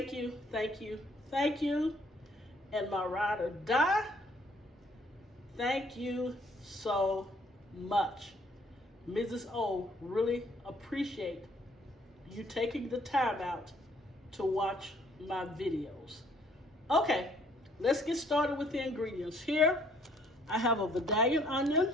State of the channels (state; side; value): normal; both; correlation 0.63